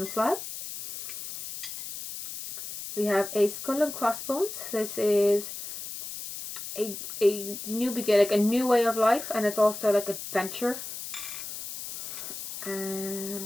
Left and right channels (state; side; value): noise; left; hiss, 9 dB below the sound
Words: We have a skull and crossbones. This is a new beginning, like a new way of life, and it's also like adventure.